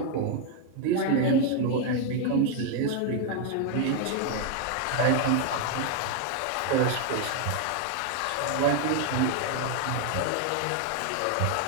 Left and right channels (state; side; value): different; both; correlation 0.01